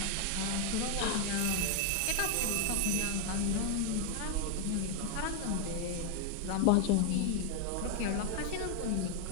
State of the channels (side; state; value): both; different; correlation 0.00